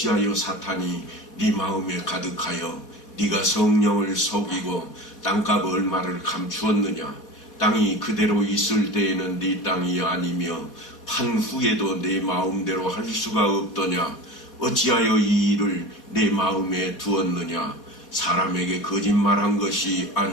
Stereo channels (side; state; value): right; late; 4.1 ms